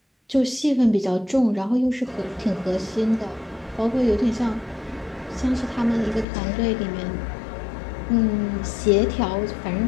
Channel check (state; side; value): drops out; right; at 6.2 s